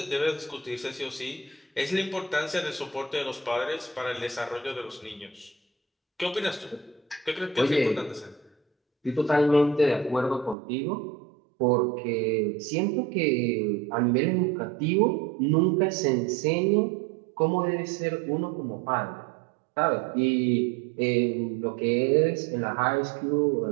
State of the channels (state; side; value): drops out; left; at 10.6 s